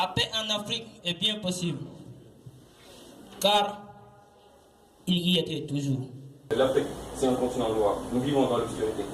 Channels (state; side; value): identical; both; correlation 1.00